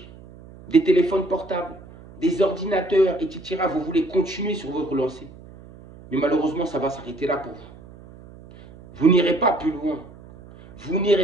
des téléphones portables, des ordinateurs, etc. Vous voulez continuer sur votre lancée. Mais malheureusement, ça va s'arrêter là pour vous. Vous n'irez pas plus loin. Vous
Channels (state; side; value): noise; right; hum, 20 dB below the sound